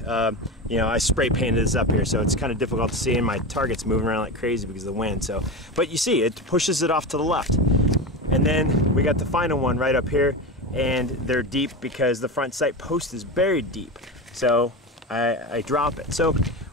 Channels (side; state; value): both; normal; correlation 0.23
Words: You know, I spray painted this up here, so it's kind of difficult to see, and my target's moving around like crazy because of the wind. So, but you see, it pushes it off to the left. And then we got the final one right up here, and they're deep because the front sight post is buried deep. So I drop it. So